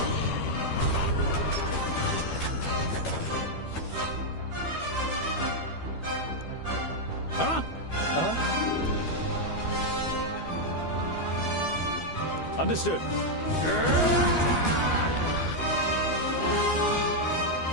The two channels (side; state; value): right; late; 12 ms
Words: Huh? Uh-huh. Understood.